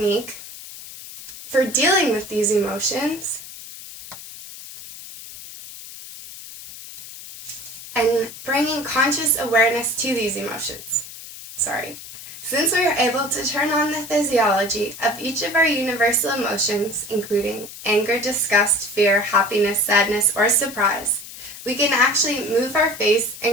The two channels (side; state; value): left; noise; hiss, 14 dB below the sound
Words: for dealing with these emotions and bringing conscious awareness to these emotions. Since we are able to turn on the physiology of each of our universal emotions, including anger, disgust, fear, happiness, sadness, or surprise, we can actually move our face